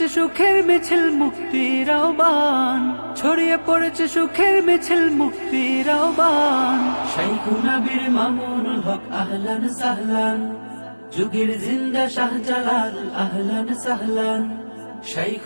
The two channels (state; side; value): inverted; both; correlation -1.00